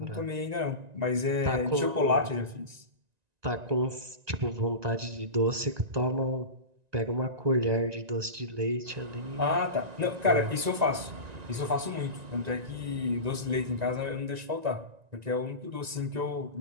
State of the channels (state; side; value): late; left; 1.9 ms